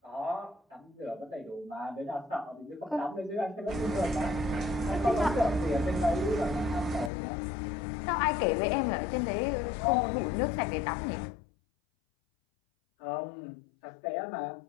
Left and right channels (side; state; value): right; drops out; at 7.1 s